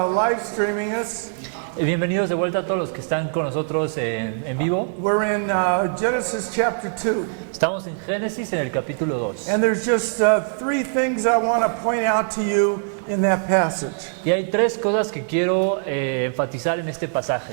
streaming us. Bienvenidos de vuelta a todos los que están con nosotros en vivo. We're in Genesis chapter 2. Estamos en Génesis en el capítulo 2. And there's just three things I want to point out to you in that passage. Y hay tres cosas que quiero enfatizar en este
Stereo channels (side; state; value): left; silent; digital silence